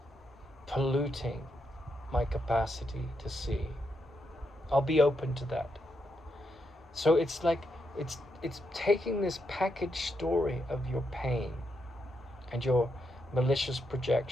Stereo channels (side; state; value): both; normal; correlation 0.82